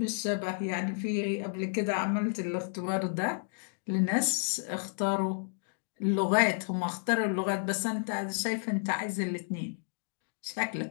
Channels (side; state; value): right; silent; digital silence